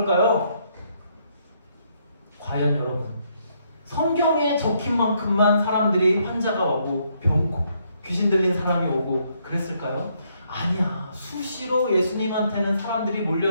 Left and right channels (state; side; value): inverted; both; correlation -0.73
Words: 과연 여러분, 성경에 적힌 만큼만 사람들이 환자가 오고 귀신 들린 사람이 오고 그랬을까요? 아니야. 수시로 예수님한테는 사람들이